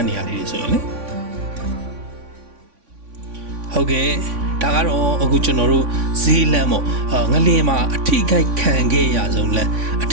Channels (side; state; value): left; late; 3.5 ms